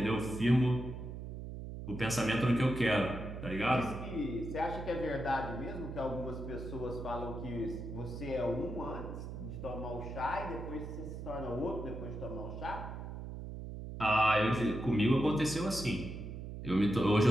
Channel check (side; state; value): right; noise; hum, 8 dB below the sound